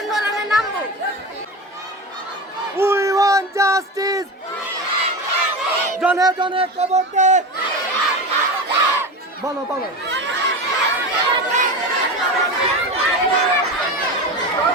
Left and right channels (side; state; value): both; normal; correlation 0.25